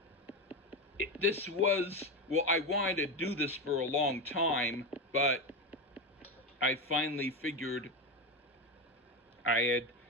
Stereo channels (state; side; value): normal; both; correlation 0.16